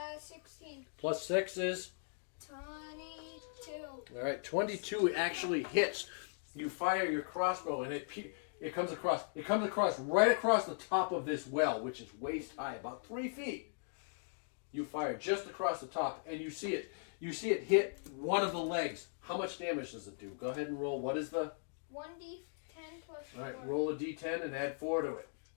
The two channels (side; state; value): right; silent; digital silence